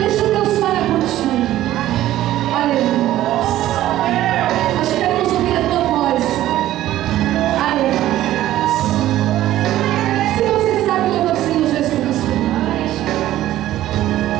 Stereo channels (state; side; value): quieter; left; 13.9 dB